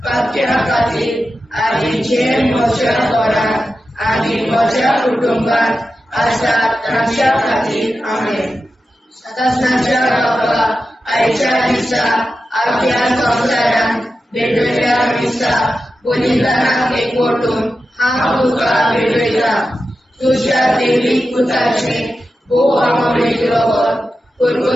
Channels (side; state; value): both; normal; correlation 0.91